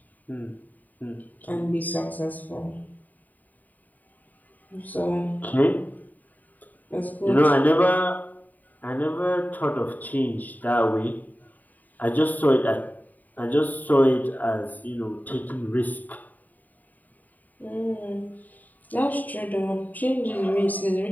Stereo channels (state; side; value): late; right; 0.082 ms